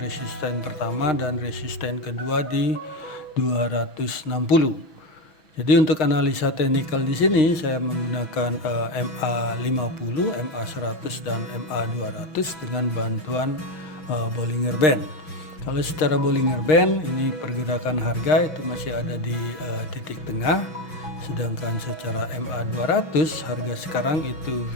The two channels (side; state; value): right; late; 6.1 ms